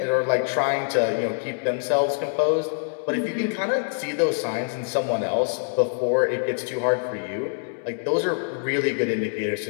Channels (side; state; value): right; silent; 61 dB below the other